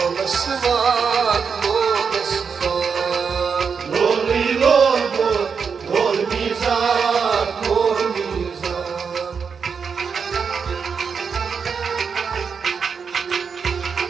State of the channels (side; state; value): left; quieter; 6.0 dB